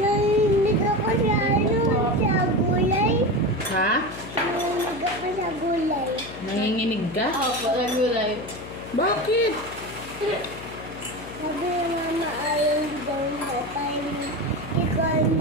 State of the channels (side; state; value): left; noise; hum, 14 dB below the sound